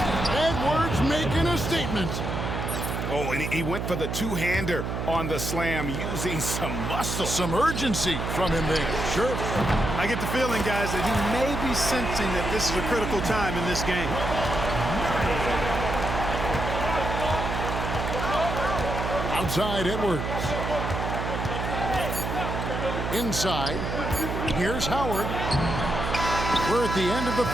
Edwards making a statement. Oh, and he went for the two-hander on the slam using some muscle. Some urgency from him there. Sure. I get the feeling, guys, that he may be sensing that this is a critical time in this game. Outside Edwards. Inside. Here's Howard. We're at the end of the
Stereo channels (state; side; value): noise; right; hum, 3 dB below the sound